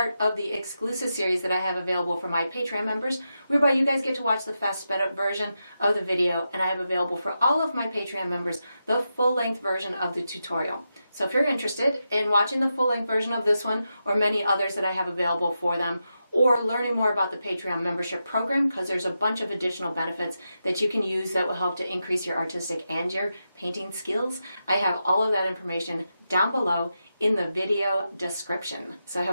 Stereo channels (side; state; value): both; inverted; correlation -0.88